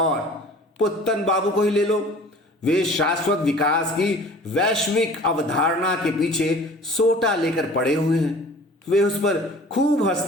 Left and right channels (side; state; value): both; normal; correlation 0.45